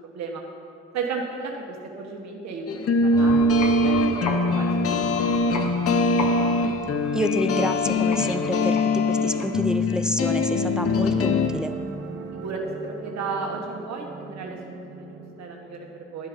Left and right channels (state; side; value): normal; both; correlation 0.39